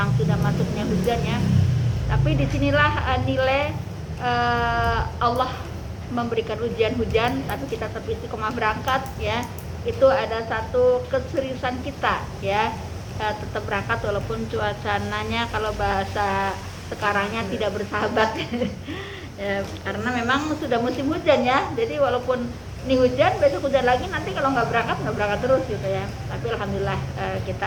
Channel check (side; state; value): both; identical; correlation 1.00